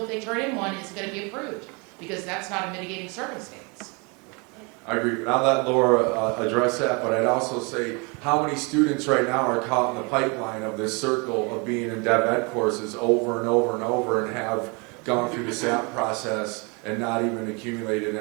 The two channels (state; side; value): quieter; left; 30.9 dB